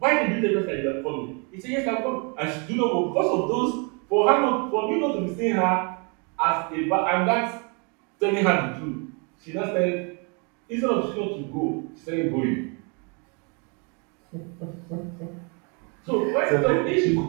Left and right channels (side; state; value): left; quieter; 34.6 dB